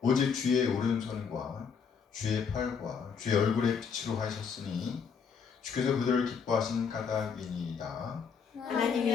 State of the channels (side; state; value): right; quieter; 6.3 dB